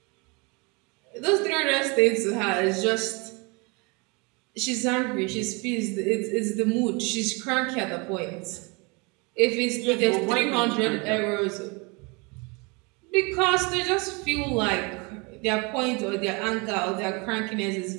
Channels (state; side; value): quieter; left; 29.4 dB